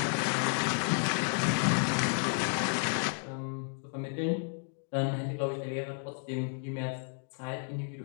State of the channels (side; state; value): right; silent; 56 dB below the other